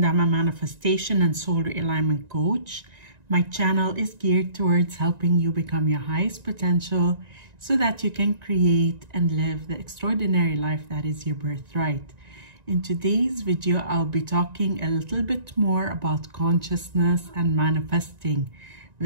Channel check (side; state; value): left; late; 1.9 ms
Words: I'm a manifestation and soul realignment coach. My channel is geared towards helping you become your highest potential so that you can create and live the extraordinary life that is your birthright. In today's video, I'll be talking a little bit more about consciousness and manifesting.